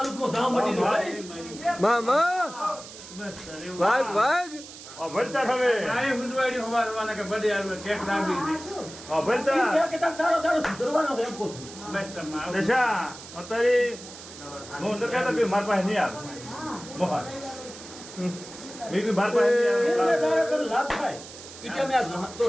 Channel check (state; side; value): noise; right; hiss, 15 dB below the sound